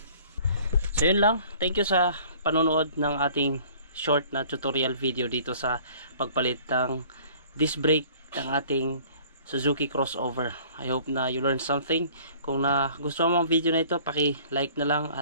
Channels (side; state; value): both; inverted; correlation -0.51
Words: So yun lang, thank you sa panonood ng ating short na tutorial video dito sa pagpalit ng disc brake ng ating Suzuki crossover. I hope na you learned something. Kung gusto mo ang video na ito, paki-like na lang,